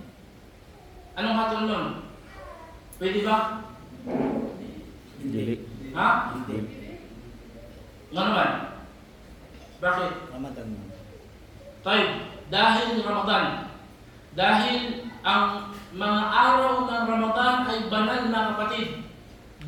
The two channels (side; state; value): both; identical; correlation 1.00